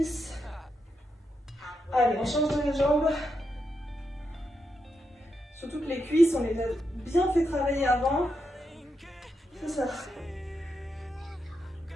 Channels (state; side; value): normal; both; correlation 0.84